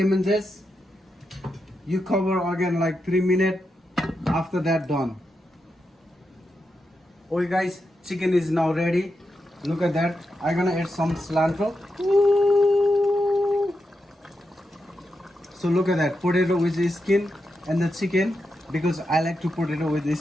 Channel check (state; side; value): normal; both; correlation 0.86